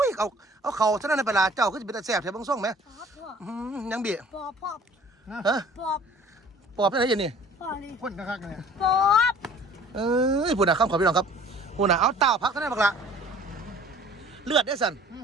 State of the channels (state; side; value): normal; both; correlation 0.50